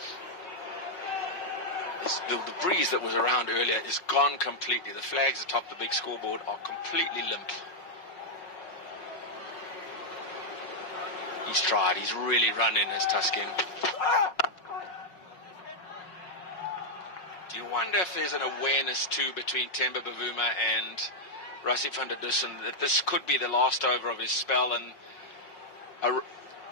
The breeze that was around earlier is gone completely. The flags atop the big scoreboard are completely limp. He's tried. He's really run in as Tuskin. Do you wonder if there's an awareness too between Themba Bavuma and Rassie van der Dussen that this could be the last over of his spell and a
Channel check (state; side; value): late; right; 5.5 ms